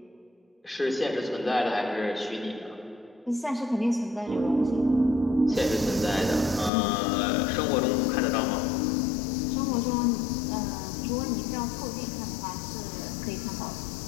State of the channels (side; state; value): right; drops out; at 6.7 s